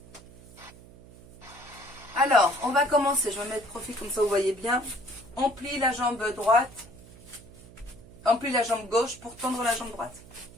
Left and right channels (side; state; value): right; noise; hum, 21 dB below the sound